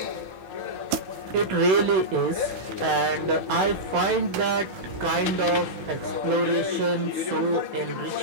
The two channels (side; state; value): left; late; 16 ms